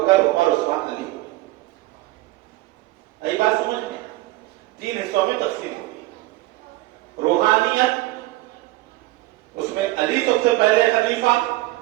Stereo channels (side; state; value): left; quieter; 19.4 dB